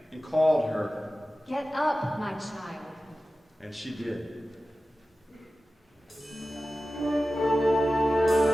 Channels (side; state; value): both; normal; correlation 0.95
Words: and called her, "Get up, my child." and she did.